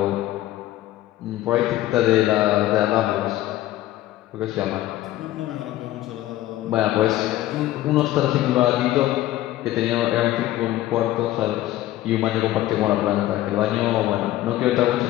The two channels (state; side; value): quieter; right; 15.0 dB